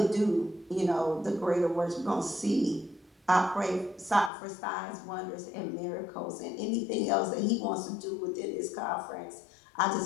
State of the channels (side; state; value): right; drops out; at 4.3 s